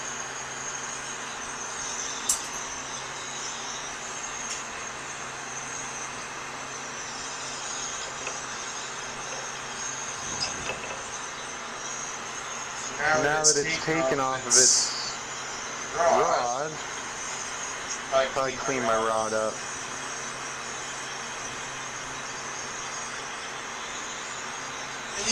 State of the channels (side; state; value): both; identical; correlation 1.00